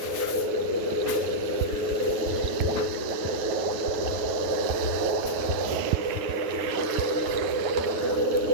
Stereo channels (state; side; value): late; left; 9.4 ms